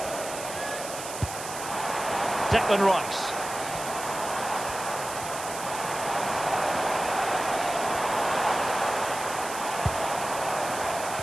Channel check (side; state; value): right; noise; hiss, 9 dB below the sound